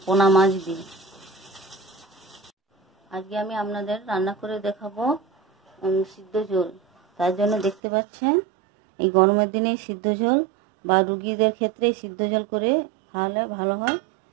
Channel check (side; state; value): left; drops out; at 7.8 s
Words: পোনা মাছ দিয়ে। আজকে আমি আপনাদের রান্না করে দেখাবো সিদ্ধ ঝোল। তার জন্য দেখতে পাচ্ছেন এই গরমের দিনে সিদ্ধ ঝোল বা রুগীদের ক্ষেত্রে সিদ্ধ ঝোল করে খাওয়ালে ভালো হয়।